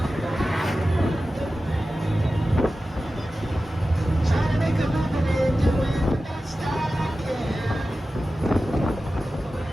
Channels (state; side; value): normal; both; correlation 0.94